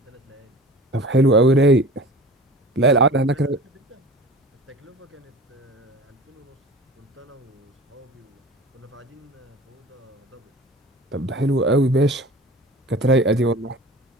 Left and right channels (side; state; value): both; normal; correlation 0.39